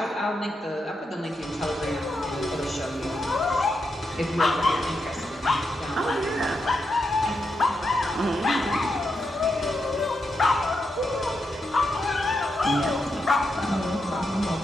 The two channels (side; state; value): both; normal; correlation 0.85